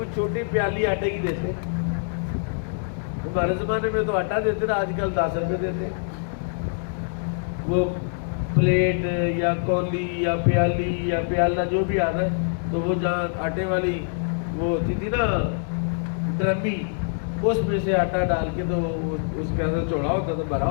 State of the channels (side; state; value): right; silent; digital silence